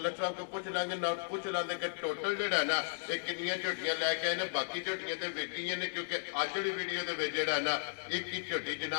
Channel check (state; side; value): silent; right; 54 dB below the other